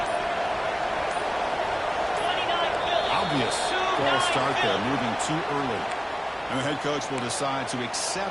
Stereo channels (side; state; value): both; identical; correlation 1.00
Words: Obvious false start there, moving too early. And the head coach will decide to